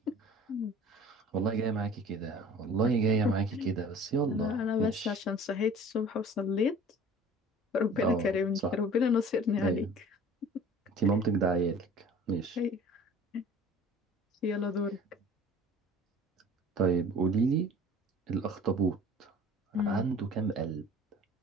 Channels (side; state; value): both; normal; correlation 0.46